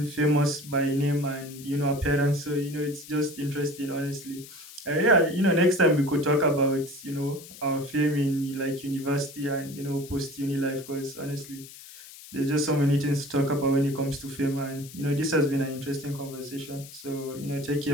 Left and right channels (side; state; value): left; noise; hiss, 17 dB below the sound